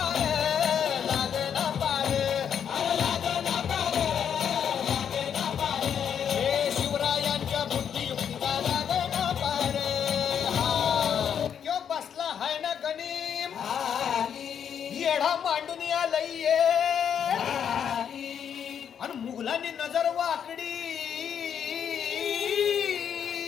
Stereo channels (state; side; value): quieter; right; 8.2 dB